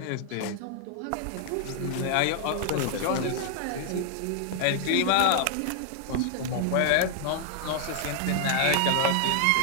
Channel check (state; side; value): different; both; correlation 0.00